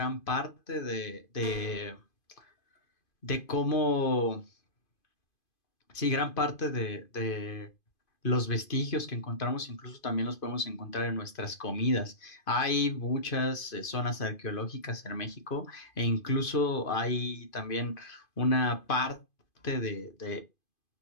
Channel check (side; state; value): right; late; 2.5 ms